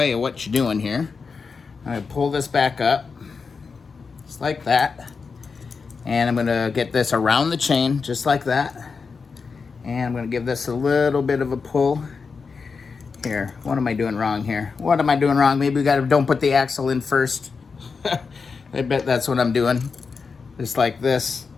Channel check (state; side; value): quieter; right; 5.1 dB